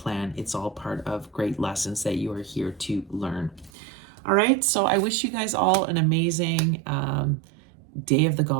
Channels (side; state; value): left; drops out; at 3.7 s